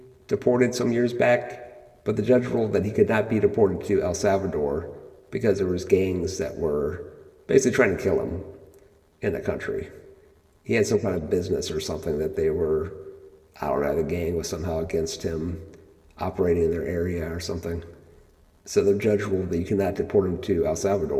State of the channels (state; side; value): identical; both; correlation 1.00